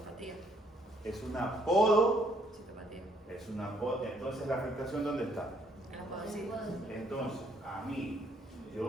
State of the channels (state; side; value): normal; both; correlation 0.68